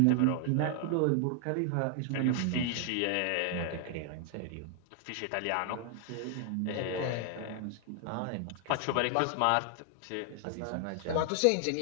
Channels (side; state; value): both; different; correlation 0.00